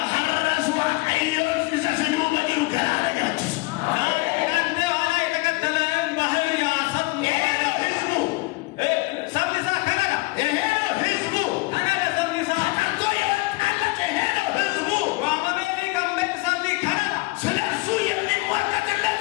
ሐራስ ዋቀዮ ዘሰኑ በድሩ ገላለያችሁ አንተ ኋላ የተከተለን ባህር ያሰጥ ህዝቡ ሰብሊሳ ከነጋ ይሄ ነው ህዝቡ አናደ ሰብሊሳ ተቀርቶ የወጣለት ይሄ ነው ህዝቡ ዋመሜኒ ገመት ሰብሊ ከነጋ ስለሱ የሚሟገትለት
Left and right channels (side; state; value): right; quieter; 24.4 dB